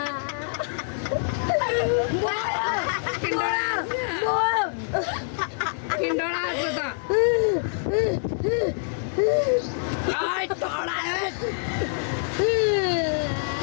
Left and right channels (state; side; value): silent; right; digital silence